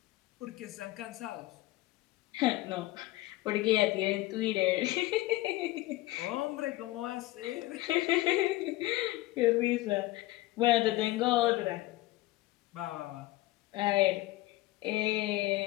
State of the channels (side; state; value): right; quieter; 18.2 dB